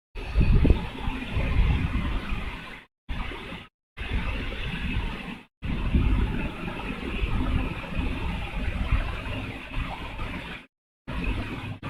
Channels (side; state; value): both; identical; correlation 1.00